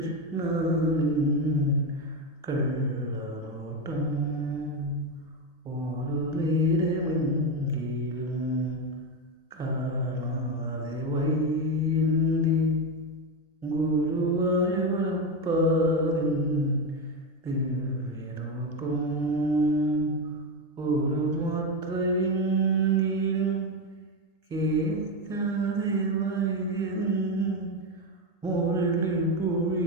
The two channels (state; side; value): normal; both; correlation 0.12